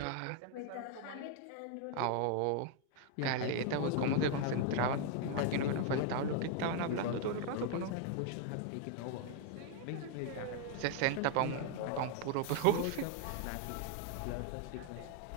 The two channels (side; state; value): both; different; correlation 0.00